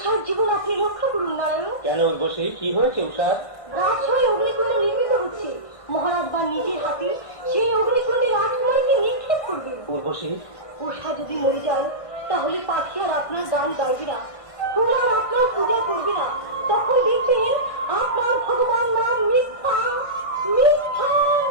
জীবন আপনি রক্ষা করুন নারায়ণ। কেন উর্বশী, কি হয়েছে উষার? রাজশাহী অগ্নিকুণ্ড নির্মিত হচ্ছে। মহারাজ বা নিজের হাতে সেই অগ্নিকুণ্ডে রাজকুমারীকে নিক্ষেপ করবেন। উর্বশী, উষা যদি মরে যায় তাহলে পাখি আর আপনার গান গাইবে না, ফুল আর আপনার পূজা করবে না। তখন দেখবেন আপনার ভগবান নাম মিথ্যা মিথ্যা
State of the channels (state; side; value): late; right; 1.5 ms